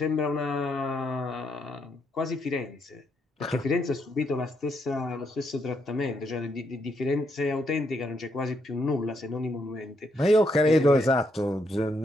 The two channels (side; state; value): both; normal; correlation 0.77